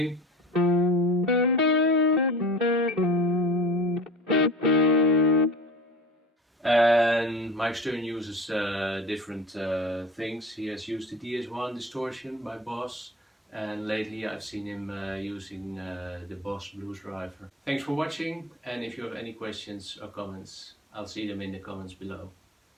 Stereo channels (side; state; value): both; normal; correlation 0.36